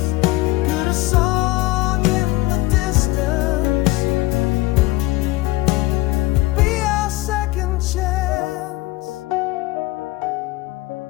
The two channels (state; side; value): quieter; right; 19.7 dB